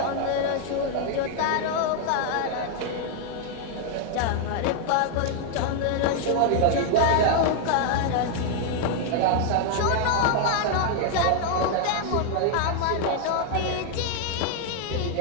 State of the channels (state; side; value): different; both; correlation 0.00